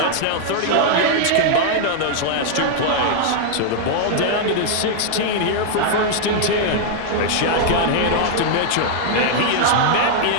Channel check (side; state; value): both; different; correlation -0.01